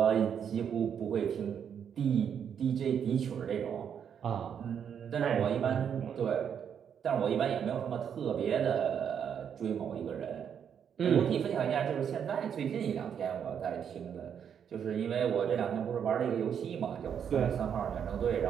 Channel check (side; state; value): left; quieter; 8.0 dB